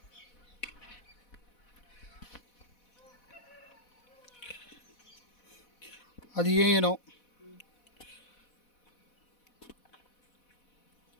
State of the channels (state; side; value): late; right; 4.1 ms